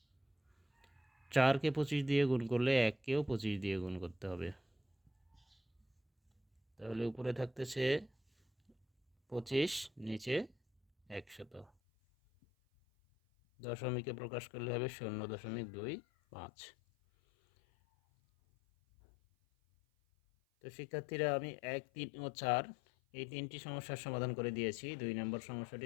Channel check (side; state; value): right; drops out; at 11.7 s